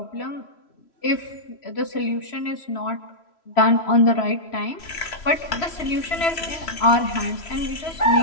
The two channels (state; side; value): late; right; 3.0 ms